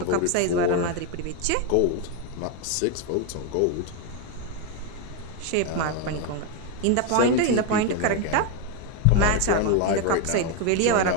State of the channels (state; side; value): different; both; correlation 0.01